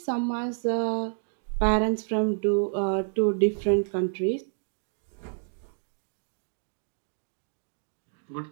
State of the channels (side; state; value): left; silent; 59 dB below the other